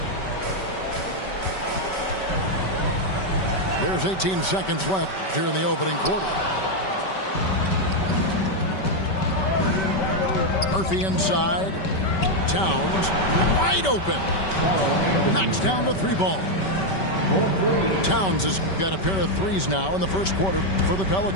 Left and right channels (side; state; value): right; late; 5.2 ms